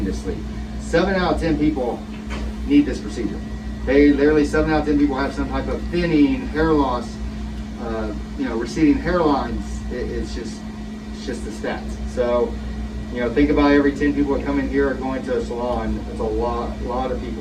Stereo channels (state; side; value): identical; both; correlation 1.00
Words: 7 out of 10 people need this procedure. They literally 7 out of 10 people have some type of thinning, hair loss, you know, receding hairlines. It's just the stats. So, you know, think about every 10 people that come in here are going to a salon. It's a lot of